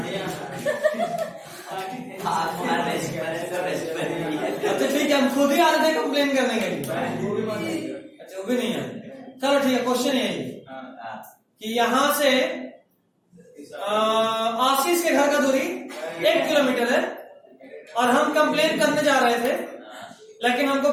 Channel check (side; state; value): both; identical; correlation 1.00